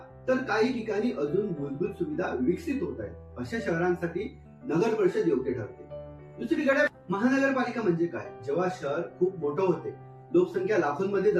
तर काही ठिकाणी अजून मूलभूत सुविधा विकसित होत आहेत, अशा शहरांसाठी नगर परिषद योग्य ठरते. दुसरीकडे महानगरपालिका म्हणजे काय? जेव्हा शहर खूप मोठं होते, लोकसंख्या लाखोंमध्ये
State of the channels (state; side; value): identical; both; correlation 1.00